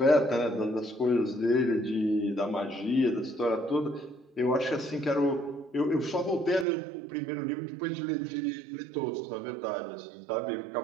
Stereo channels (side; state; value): left; drops out; at 6.7 s